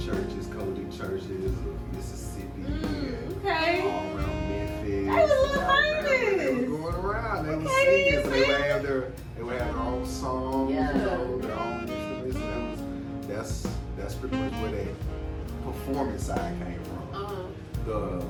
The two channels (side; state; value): both; identical; correlation 1.00